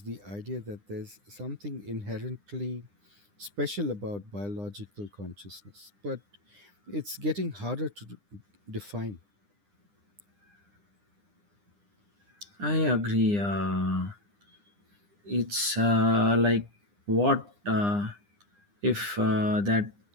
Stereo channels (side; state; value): left; late; 9.9 ms